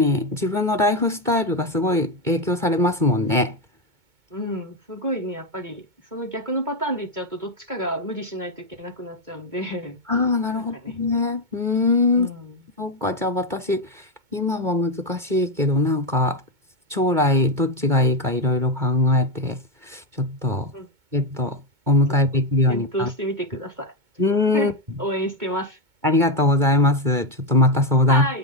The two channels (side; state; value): left; late; 2.2 ms